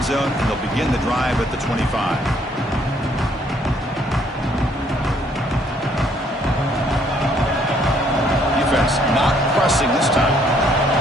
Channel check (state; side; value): normal; both; correlation 0.66